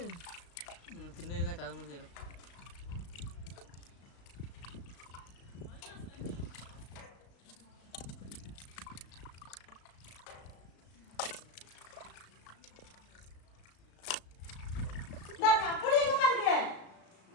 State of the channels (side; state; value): right; late; 35 ms